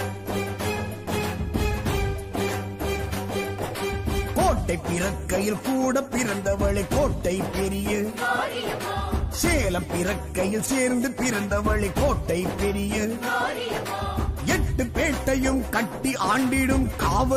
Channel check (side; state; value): both; identical; correlation 1.00